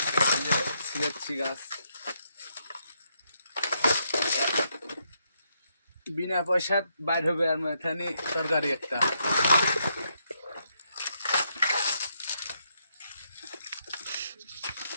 সিলেক্সি গাছ বিনা পয়সা বাইর হবে, আর এখানে তরকারি একটা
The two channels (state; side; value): inverted; both; correlation -0.78